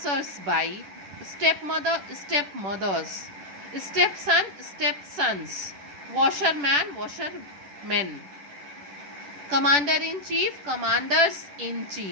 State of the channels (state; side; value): late; left; 10 ms